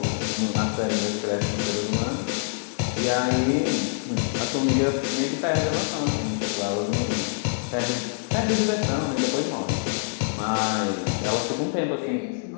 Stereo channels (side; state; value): right; silent; digital silence